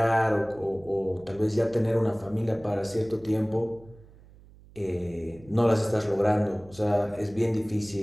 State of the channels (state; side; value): noise; right; hum, 23 dB below the sound